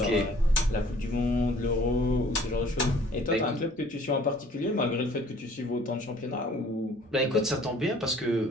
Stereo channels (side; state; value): both; normal; correlation 0.55